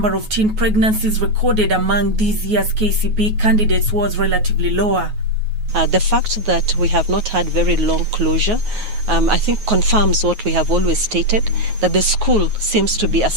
of teen pregnancies recorded among this year's KCPE candidates was relatively lower. The fact that we have not had very long closure, I think confirms what we have always stated, that the school seems to be a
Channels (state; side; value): late; left; 9.4 ms